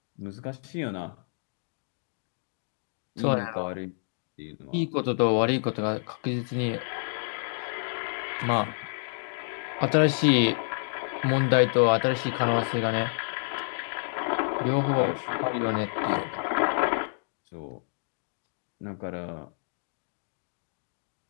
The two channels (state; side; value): silent; right; digital silence